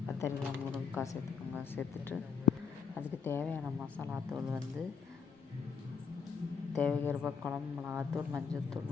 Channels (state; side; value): quieter; right; 6.2 dB